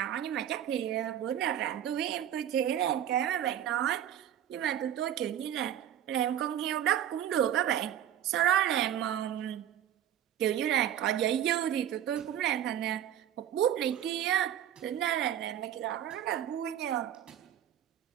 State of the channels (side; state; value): left; quieter; 10.7 dB